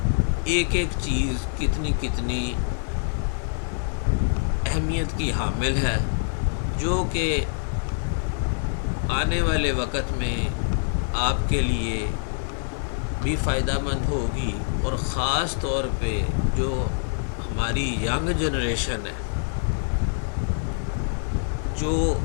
ایک ایک چیز کتنی کتنی اہمیت کی حامل ہے، جو کہ آنے والے وقت میں آپ کے لیے بھی فائدہ مند ہوگی، اور خاص طور پہ جو ہماری ینگ جنریشن ہے، جو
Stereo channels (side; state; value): right; silent; digital silence